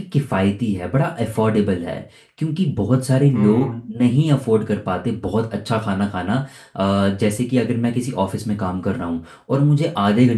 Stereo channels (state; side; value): identical; both; correlation 1.00